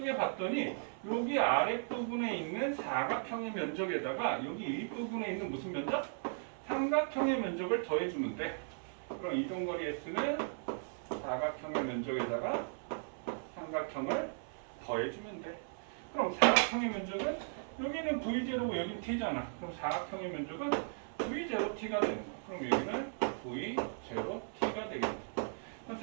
여기 아랫부분에 있는 사각형의 면적에다가 여기 윗부분에 있는 무슨 면적? 삼각형의 면적을 더해주면 돼. 그럼 이동거리 S는 사각형의 면적에다가 삼각형을 더해주면 돼. 그럼 사각형의 면적은 여기는 V0고 여기는 T잖아. 그럼 사각형의 면적은 V0T가 되는 거야. 그럼 여기는 V 제로 T가 되겠네. 그럼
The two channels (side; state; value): left; silent; 53 dB below the other